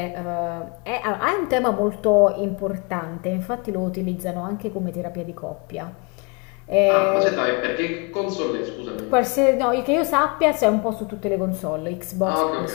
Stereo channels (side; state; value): right; quieter; 31.4 dB